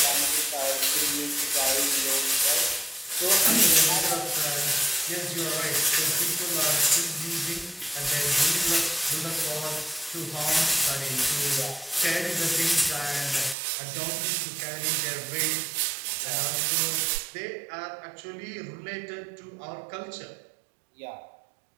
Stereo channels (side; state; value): left; drops out; at 13.6 s